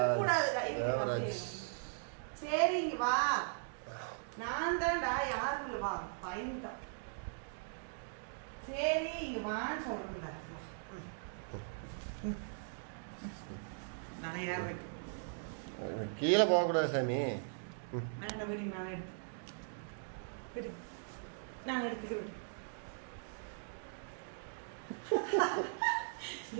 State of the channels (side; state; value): left; silent; digital silence